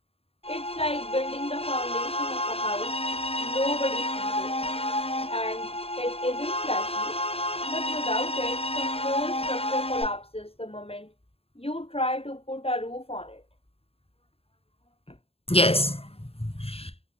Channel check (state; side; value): late; right; 0.28 ms